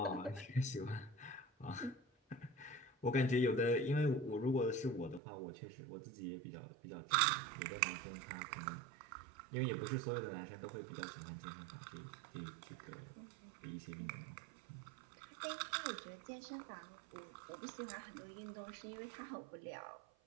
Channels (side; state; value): left; drops out; at 5.2 s